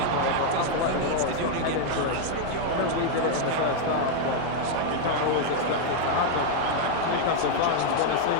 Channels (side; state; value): both; different; correlation 0.00